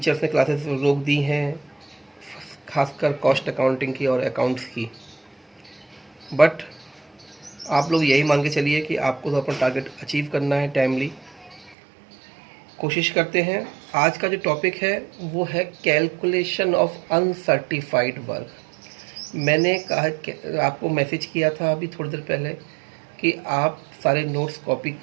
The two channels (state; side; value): drops out; left; at 11.8 s